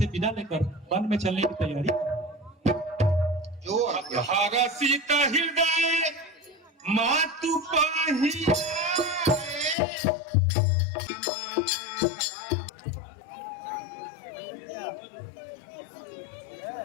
विदा लेकर वन में चलने की तैयारी करो। जो हरसित हृदय मातु पाही,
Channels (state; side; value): drops out; right; at 9.8 s